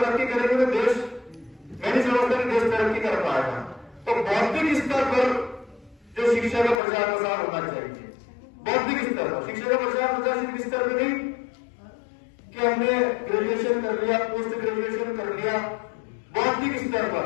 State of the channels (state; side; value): drops out; right; at 6.8 s